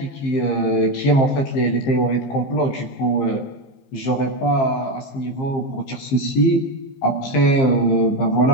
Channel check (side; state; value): right; late; 15 ms